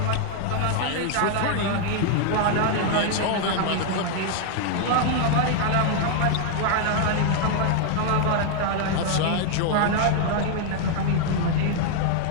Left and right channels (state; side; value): different; both; correlation 0.00